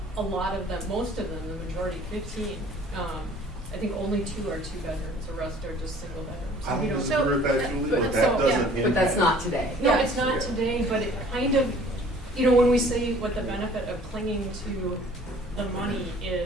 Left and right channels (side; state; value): both; normal; correlation 0.52